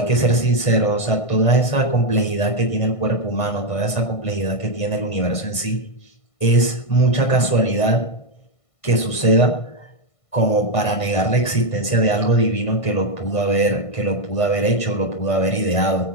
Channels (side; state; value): right; late; 1.5 ms